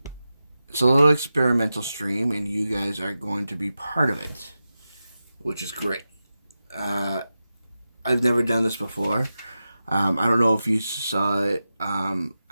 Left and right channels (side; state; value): both; inverted; correlation -0.92